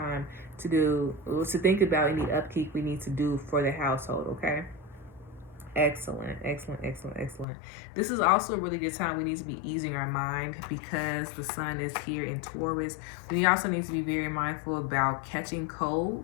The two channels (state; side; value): drops out; right; at 7.5 s